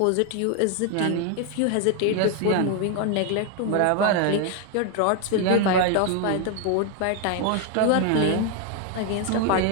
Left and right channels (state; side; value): different; both; correlation 0.01